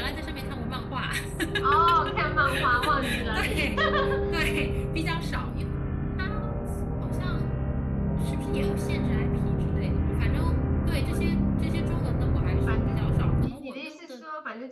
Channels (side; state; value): both; identical; correlation 1.00